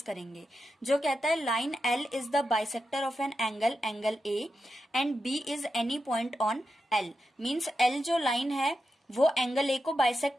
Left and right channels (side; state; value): both; normal; correlation 0.88